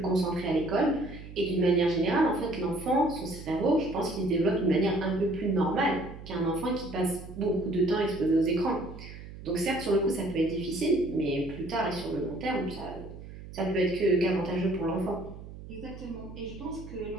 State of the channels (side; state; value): right; noise; hum, 14 dB below the sound